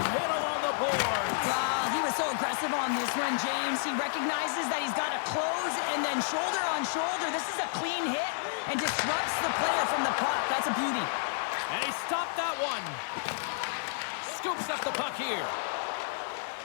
hit along the boards. He was so aggressive on this one, James. He recognizes that he's got to close and then shoulder on shoulder. This is a clean hit and disrupts the player from the puck. That's a beauty. And he stopped that one. Scoops up the puck here.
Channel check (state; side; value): silent; right; digital silence